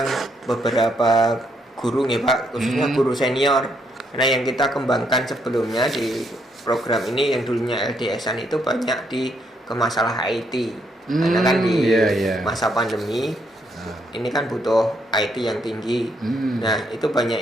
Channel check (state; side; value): normal; both; correlation 0.74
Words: beberapa guru nih Pak, khususnya guru senior, karena yang kita kembangkan sebelumnya di program ini yang dulunya LDS-an itu banyak di ke masalah IT karena kan di masa pandemi ini kan butuh IT yang tinggi. Nah, itu